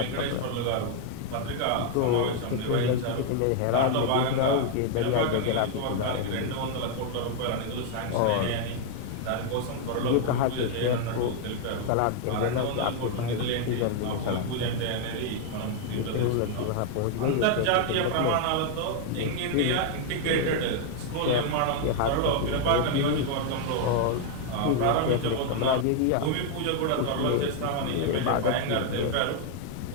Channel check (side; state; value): both; different; correlation 0.00